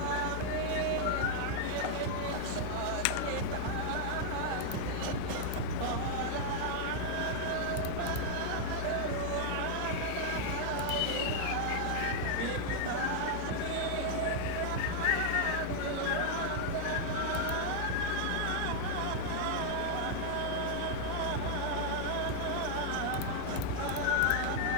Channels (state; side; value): different; both; correlation 0.00